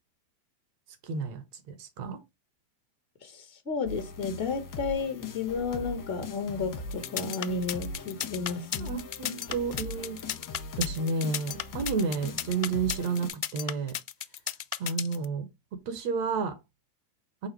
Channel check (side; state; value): left; late; 2.0 ms